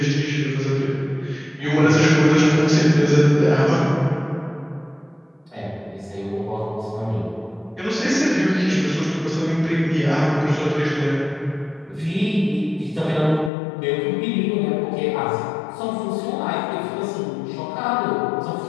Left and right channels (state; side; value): drops out; right; at 13.5 s